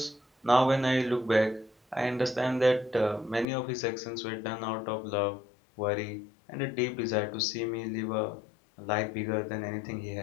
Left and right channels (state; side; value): drops out; right; at 3.5 s